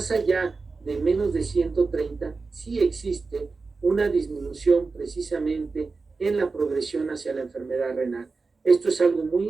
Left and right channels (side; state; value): left; quieter; 4.2 dB